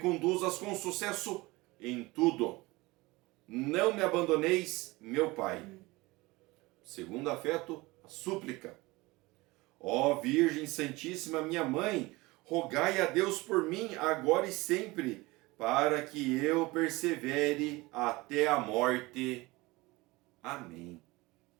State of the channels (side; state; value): left; quieter; 22.0 dB